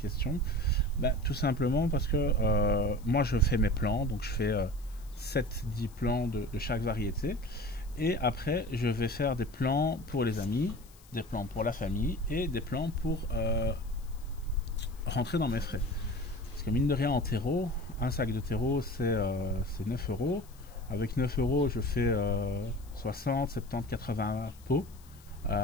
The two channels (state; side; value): noise; left; hiss, 25 dB below the sound